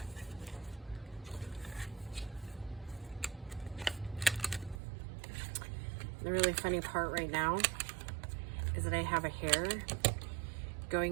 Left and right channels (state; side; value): drops out; left; at 4.8 s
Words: The really funny part right now is that I have a hair